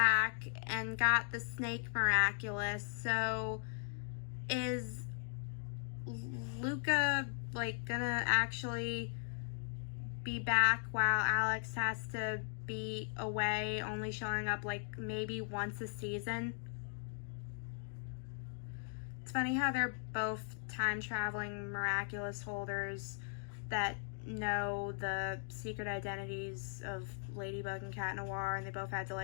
and got the Snake Miraculous, so is Luca like gonna actually be back while Alex has to be away, only showing up like maybe once a season? It's funny how they're both time traveling Miraculous holders that know the secret identities of Ladybug and Cat Noir, and they both had to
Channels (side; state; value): right; silent; digital silence